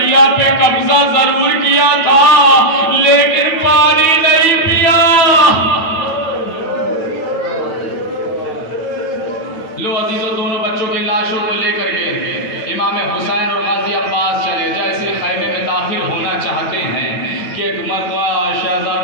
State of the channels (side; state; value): right; late; 9.1 ms